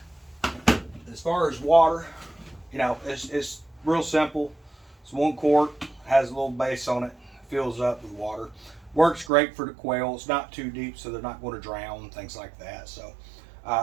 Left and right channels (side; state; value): left; drops out; at 9.3 s